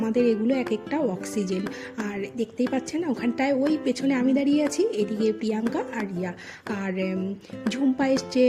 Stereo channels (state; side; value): identical; both; correlation 1.00